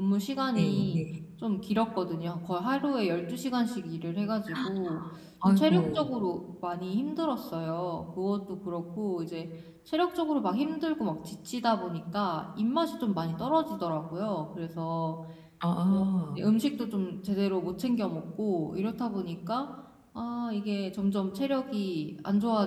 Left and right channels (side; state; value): both; identical; correlation 1.00